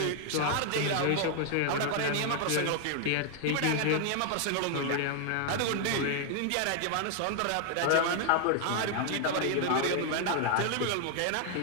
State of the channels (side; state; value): both; different; correlation 0.00